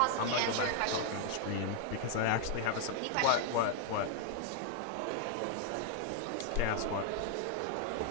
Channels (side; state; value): both; different; correlation 0.00